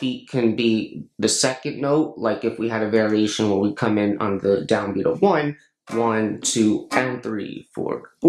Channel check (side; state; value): both; identical; correlation 1.00